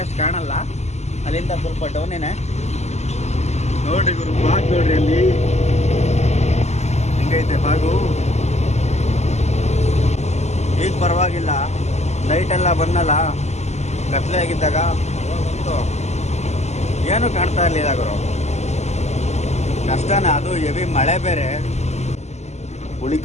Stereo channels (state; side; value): late; right; 0.33 ms